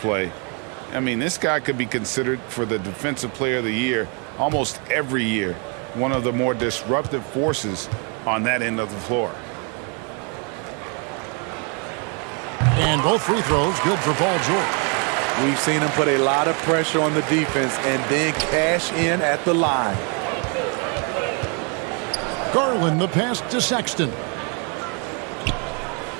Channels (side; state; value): left; quieter; 36.3 dB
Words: I mean, this guy could be considered for the Defensive Player of the Year almost every year. One of the more disruptive forces on that end of the floor. And both free throws good for Paul George. We've seen him put a lot of pressure on the defense and then cash in at the line. Garland the pass to Sexton.